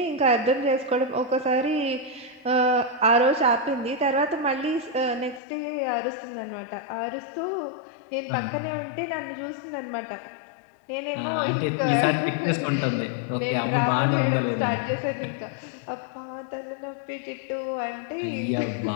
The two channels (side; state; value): right; drops out; at 5.4 s